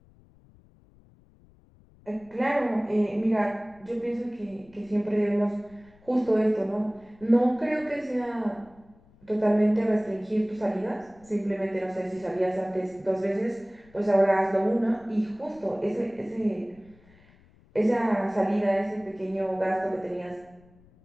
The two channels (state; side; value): noise; left; rumble, 28 dB below the sound